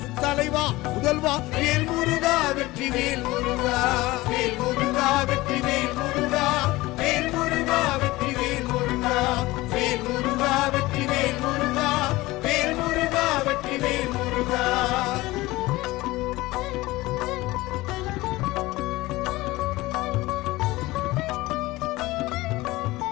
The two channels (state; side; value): quieter; right; 19.6 dB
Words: தலைவா முதல்வா வேல் முருகா வெற்றிவேல் முருகா வேல் முருகா வெற்றிவேல் முருகா வேல் முருகா வெற்றிவேல் முருகா வேல் முருகா வெற்றிவேல் முருகா வேல் முருகா வெற்றிவேல் முருகா